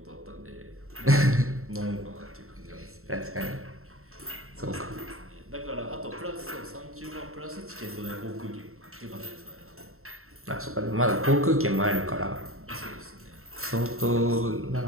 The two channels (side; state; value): left; late; 0.63 ms